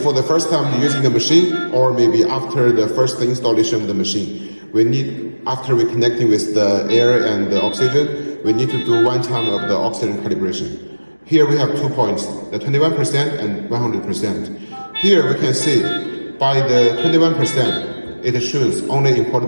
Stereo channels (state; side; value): inverted; both; correlation -1.00